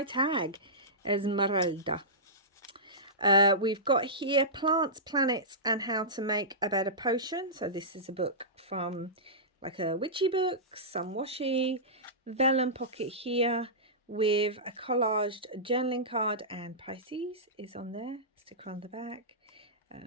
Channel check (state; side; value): normal; both; correlation -0.17